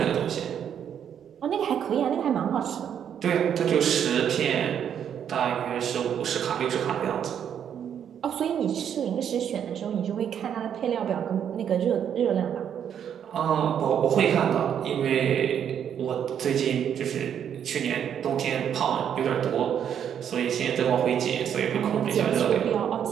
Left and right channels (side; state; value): left; quieter; 8.8 dB